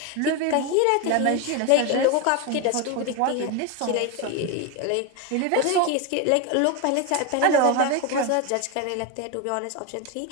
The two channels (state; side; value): different; both; correlation 0.02